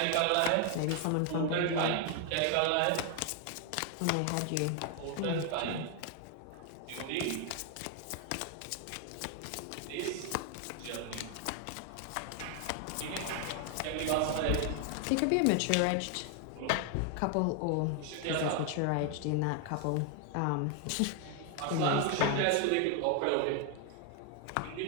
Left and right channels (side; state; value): both; different; correlation 0.00